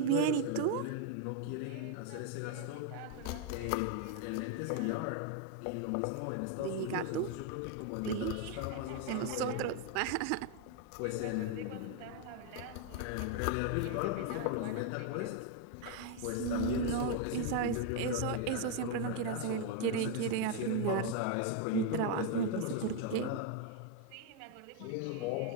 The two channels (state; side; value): different; both; correlation 0.01